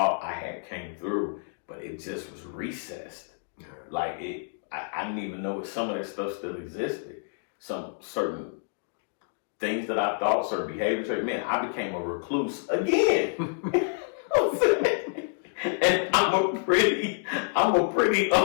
I had came through, but it just was recessed. Like I didn't even know if some of that stuff still existed. Some certain things that I thought, certain behaviors, man, I became a recluse again. And I'm a pretty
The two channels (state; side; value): silent; right; digital silence